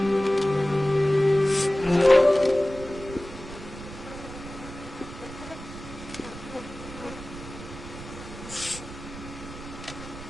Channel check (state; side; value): noise; right; rumble, 13 dB below the sound